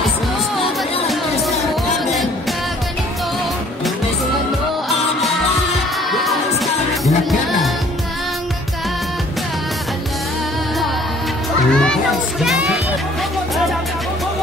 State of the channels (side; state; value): both; normal; correlation 0.57